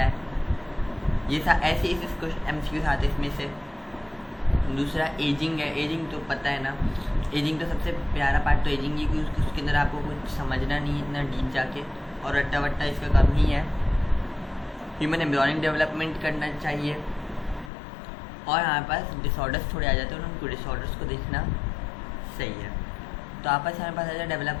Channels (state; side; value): drops out; right; at 17.7 s